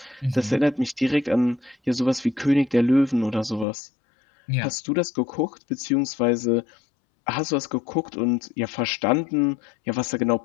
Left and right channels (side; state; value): right; drops out; at 3.7 s